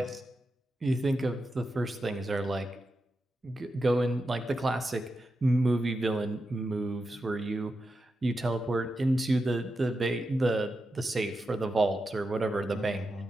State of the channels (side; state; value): both; normal; correlation 0.88